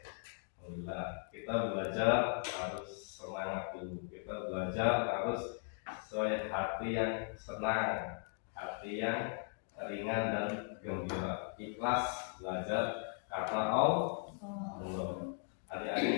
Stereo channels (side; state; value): right; silent; 52 dB below the other